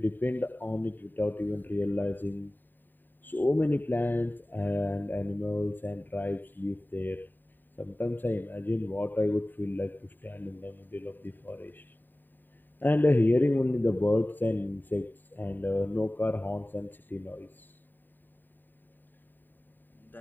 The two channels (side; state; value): right; late; 0.091 ms